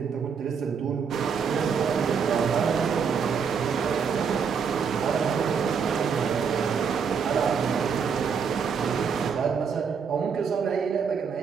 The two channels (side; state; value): left; quieter; 6.4 dB